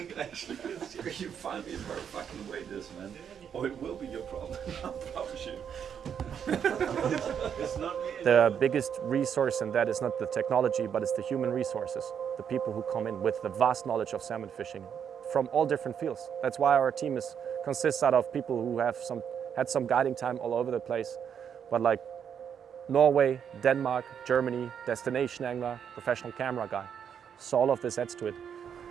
it actually is. You find me a very fucking waders, man. Or it will be your problem, I promise you. It's not me. The biggest resource in that is not the technology, but it's the human resources. The people who come in with the vast knowledge of salmon fishing from all different fields. That's why our team consists out of people who have had some guiding time all over the place. But like Norway, Denmark, Germany, destination angler, professional camera guy. So all of this adds to it.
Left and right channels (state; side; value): quieter; left; 8.0 dB